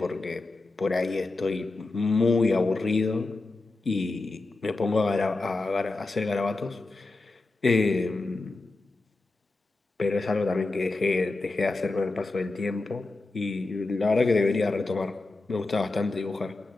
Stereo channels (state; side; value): quieter; right; 3.3 dB